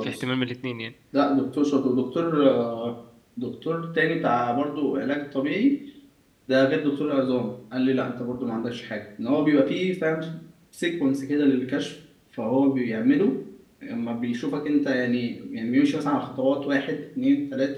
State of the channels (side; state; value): both; identical; correlation 1.00